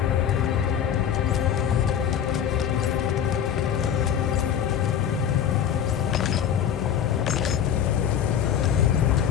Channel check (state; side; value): quieter; right; 9.1 dB